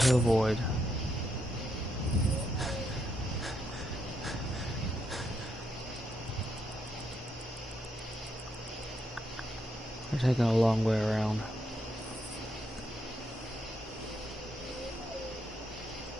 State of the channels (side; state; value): both; normal; correlation 0.79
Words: avoid. We're taking a long way around.